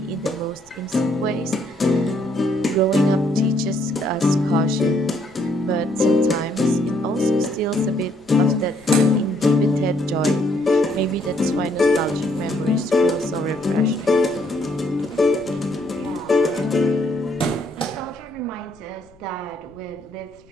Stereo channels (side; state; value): left; noise; rumble, 28 dB below the sound